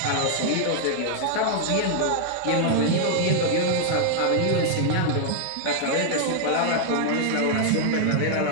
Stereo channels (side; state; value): both; different; correlation -0.01